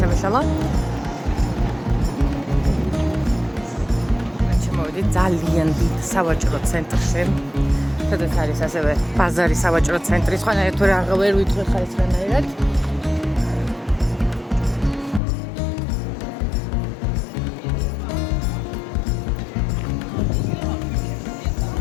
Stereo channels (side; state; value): right; drops out; at 15.2 s